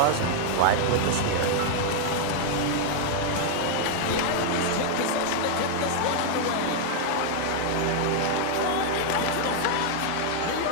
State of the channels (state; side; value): different; both; correlation 0.00